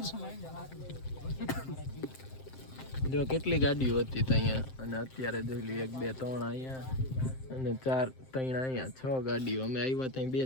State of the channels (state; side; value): late; right; 7.7 ms